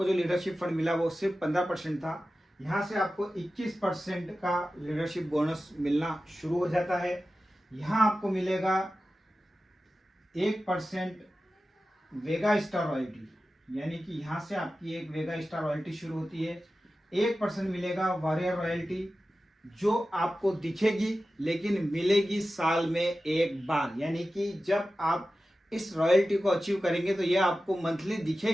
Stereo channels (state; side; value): normal; both; correlation 0.94